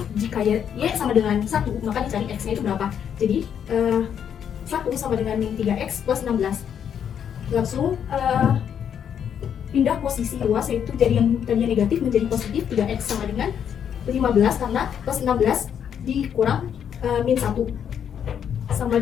jika Y sama dengan 1, maka dicari X-nya itu berapa. Jadi 1 sama dengan min 3X plus 16. Langsung pindah posisi luas, yaitu dari yang tadinya negatif menjadi positif. 3X sama dengan 15 karena plus 16 dikurang min 1 sama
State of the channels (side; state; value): right; quieter; 8.5 dB